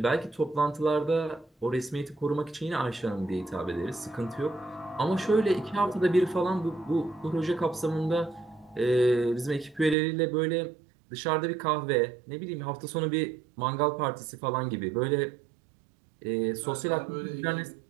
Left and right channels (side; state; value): left; drops out; at 10.0 s